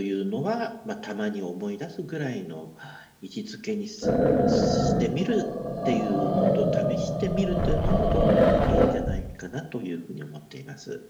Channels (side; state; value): both; identical; correlation 1.00